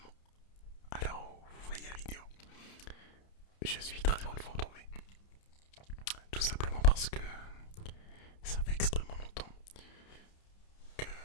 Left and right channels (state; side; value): late; right; 30 ms